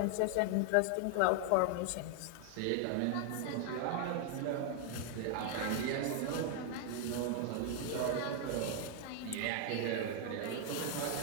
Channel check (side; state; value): both; different; correlation 0.00